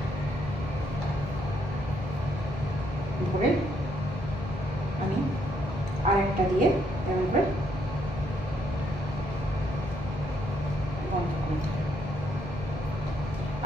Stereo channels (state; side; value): normal; both; correlation 0.73